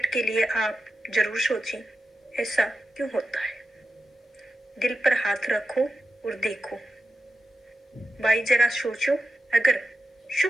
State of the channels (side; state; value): both; normal; correlation 0.91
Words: के लिए आप जरूर सोचें, ऐसा क्यों होता है। दिल पर हाथ रखो और देखो। भाई जरा सोचो, अगर